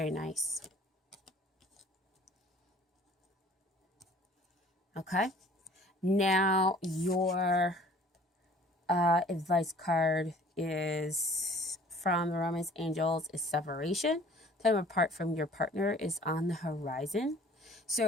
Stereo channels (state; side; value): normal; both; correlation 0.51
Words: nice. Okay. Now, your advice card is from the Romance Angels is separation. Time apart from your partner is on the horizon.